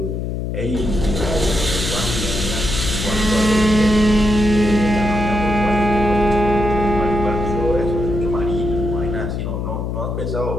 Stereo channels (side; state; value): left; noise; hum, 3 dB below the sound